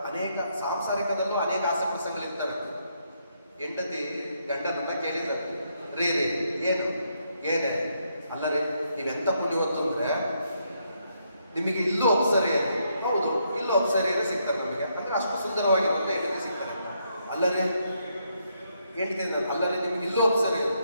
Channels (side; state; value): both; inverted; correlation -0.76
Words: ಅನೇಕ ಸಾಂಸಾರಿಕದಲ್ಲೂ ಅನೇಕ ಆಸೆ ಪ್ರಸಂಗಗಳಿರ್ತವೆ. ಹೆಂಡತಿ ಗಂಡನನ್ನ ಕೇಳಿದ್ದಾರೆ, ರೀ ಏನೇ ಅಲ್ಲರೇ ನೀವೆಂತ ಪುಣ್ಯವತ್ತು ಅಂದ್ರೆ ನಿಮಗೆ ಇಲ್ಲೂ ಅಪ್ಸರಿಯರು, ಹೌದು ಇಲ್ಲೂ ಅಪ್ಸರಿಯರೇ ಸಿಗ್ತಾರೆ ನಮಗೆ, ಅಂದ್ರೆ ಅಷ್ಟು ಸುಂದರವಾಗಿರುತ್ತೆ ಹೆಂಡತಿ ಸಿಗ್ತಾರೆ. ಅಲ್ಲರೇ ಹೇಳ್ತೀನಿ, ಅಲ್ಲರೇ ನಿಮ್ಗೆ ಇಲ್ಲೂ ಅಪ್ಸರಿಯರು,